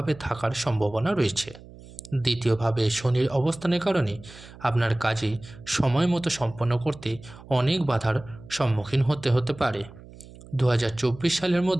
থাকার সম্ভাবনা রয়েছে। দ্বিতীয়ভাবে শনির অবস্থানের কারণে আপনার কাজে সময় মতো সম্পন্ন করতে অনেক বাধার সম্মুখীন হতে পারে। 2024 সালের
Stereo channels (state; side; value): noise; right; hum, 19 dB below the sound